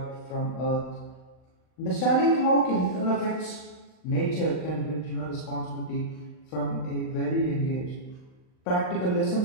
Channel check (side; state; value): right; late; 39 ms